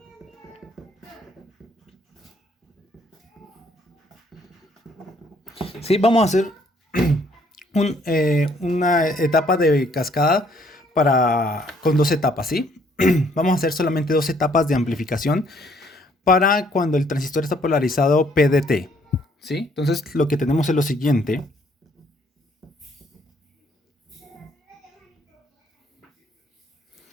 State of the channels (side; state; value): both; normal; correlation 0.65